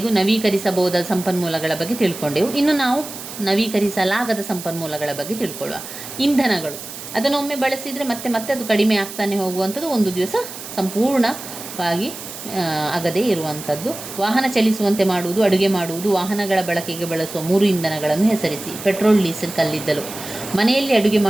ನವೀಕರಿಸಬಹುದಾದ ಸಂಪನ್ಮೂಲಗಳ ಬಗ್ಗೆ ತಿಳ್ಕೊಂಡೆವು. ಇನ್ನು ನಾವು ನವೀಕರಿಸಲಾಗದ ಸಂಪನ್ಮೂಲಗಳ ಬಗ್ಗೆ ತಿಳ್ಕೊಳ್ಳುವ. ಇಂಧನಗಳು, ಅದನ್ನೊಮ್ಮೆ ಬಳಸಿದರೆ ಮತ್ತೆ ಅದು ಕಡಿಮೆ ಆಗ್ತಾನೆ ಹೋಗುವಂಥದ್ದು, ಒಂದು ದಿವಸ ಸಂಪೂರ್ಣವಾಗಿ ಆಗದೇ ಇರುವಂಥದ್ದು. ವಾಹನ ಚಲಿಸುವಂತೆ ಮಾಡುವುದು, ಅಡುಗೆ ಮಾಡುವುದು. ವಾಹನಗಳ ಬಳಕೆಗೆ ಬಳಸುವ 3 ಇಂಧನಗಳನ್ನು ಹೆಸರಿಸಿ. ಪೆಟ್ರೋಲ್, ಡೀಸೆಲ್, ಕಲ್ಲಿದ್ದಲು. ಮನೆಯಲ್ಲಿ ಅಡುಗೆ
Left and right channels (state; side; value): noise; right; hiss, 11 dB below the sound